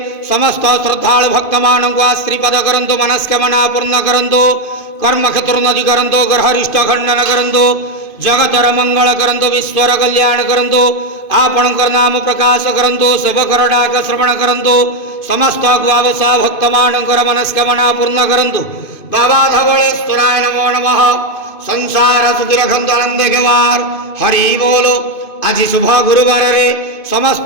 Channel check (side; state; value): right; late; 2.5 ms